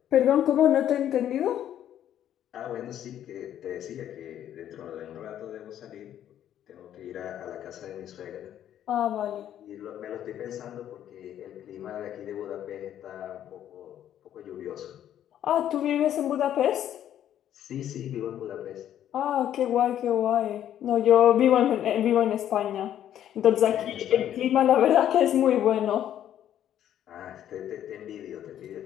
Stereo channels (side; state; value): right; quieter; 10.9 dB